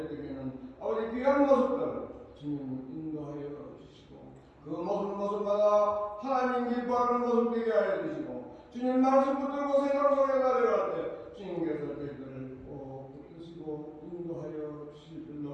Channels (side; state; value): both; identical; correlation 1.00